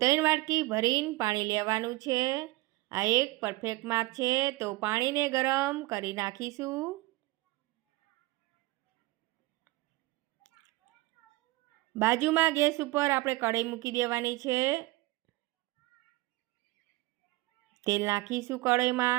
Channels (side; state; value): left; quieter; 20.5 dB